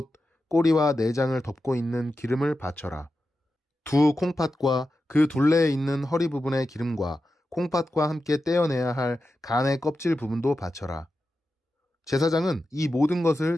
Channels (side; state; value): both; normal; correlation 0.91